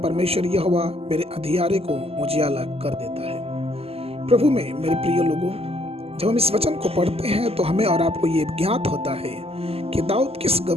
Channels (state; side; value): late; left; 0.29 ms